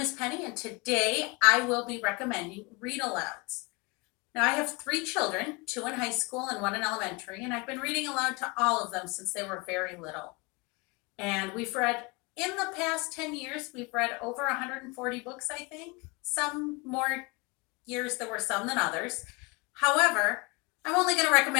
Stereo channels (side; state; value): right; quieter; 27.7 dB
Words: is Penny, and today I will be recommending read alouds. Now, I have three children, two in high school and one in elementary, and I've been reading aloud to all of them since they were very little. And we've read, in the past 10 years, we've read over 140 books, I think. Some more years there were some than others. However, I'm only going to